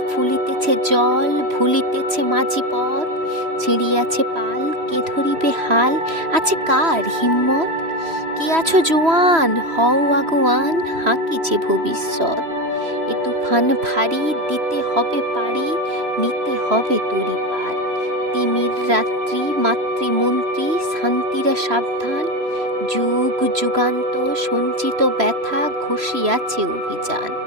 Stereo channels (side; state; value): left; late; 3.0 ms